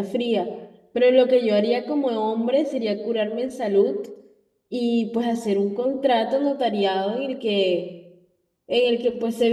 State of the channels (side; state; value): both; identical; correlation 1.00